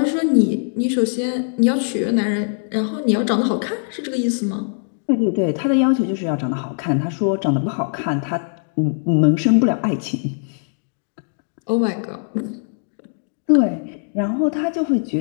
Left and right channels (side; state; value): right; silent; digital silence